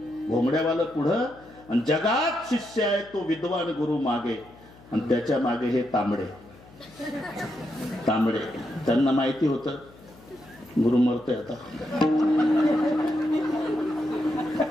घोंगड्यावाला पुढं, आणि जगात शिष्य आहे तो विद्वान गुरु मागे, आणि त्याच्या मागे हे तांबडे. त्यांना माहिती होतं गुरु मरतोय आता.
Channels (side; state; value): left; noise; hum, 23 dB below the sound